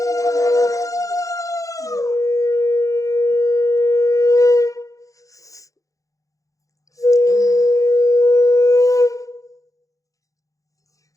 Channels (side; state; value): right; late; 0.16 ms